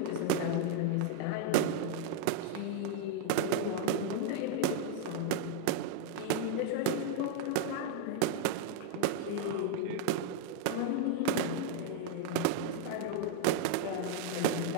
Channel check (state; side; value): different; both; correlation 0.00